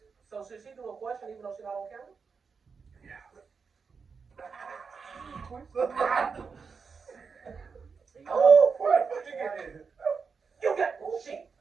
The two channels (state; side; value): quieter; left; 5.4 dB